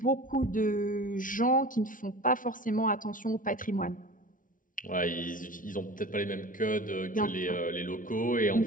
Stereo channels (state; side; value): late; right; 0.38 ms